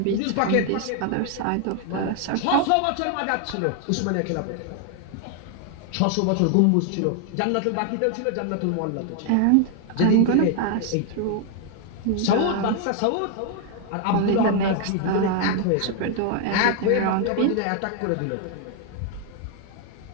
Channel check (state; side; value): different; both; correlation 0.00